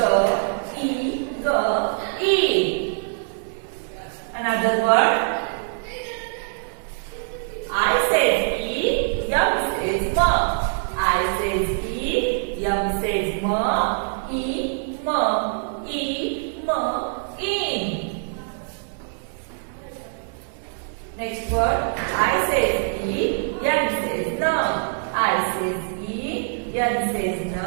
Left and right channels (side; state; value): left; silent; 63 dB below the other